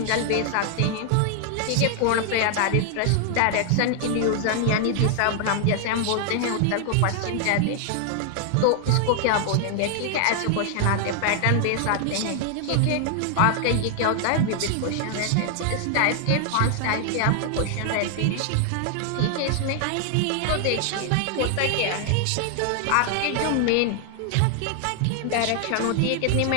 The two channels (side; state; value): both; different; correlation 0.00